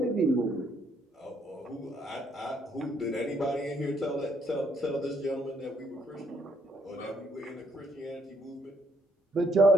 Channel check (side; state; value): both; normal; correlation 0.70